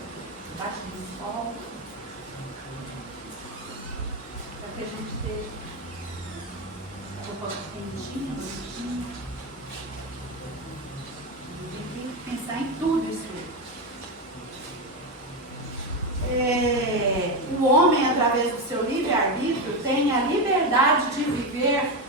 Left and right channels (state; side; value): normal; both; correlation 0.13